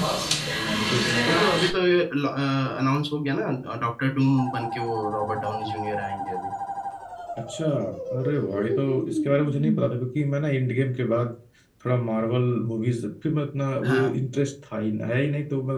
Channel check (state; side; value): identical; both; correlation 1.00